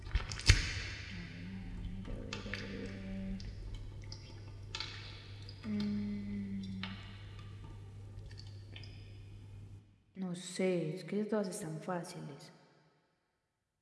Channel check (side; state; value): both; identical; correlation 1.00